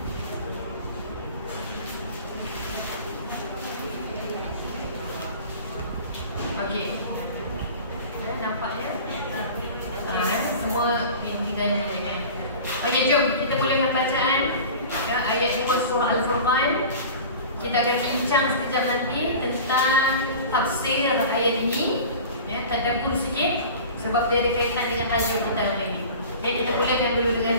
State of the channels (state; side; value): inverted; both; correlation -0.38